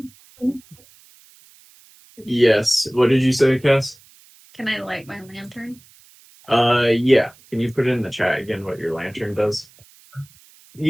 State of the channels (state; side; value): noise; right; hiss, 27 dB below the sound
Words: Yes. What did you say, Cass? Can I light my lantern? Yeah. Can you put it in the chat again what your lantern does?